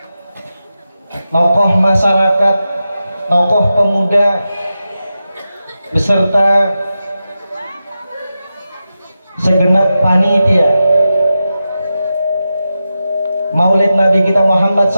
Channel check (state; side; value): inverted; both; correlation -0.91